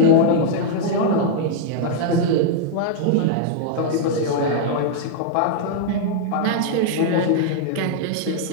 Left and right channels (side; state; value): both; different; correlation -0.01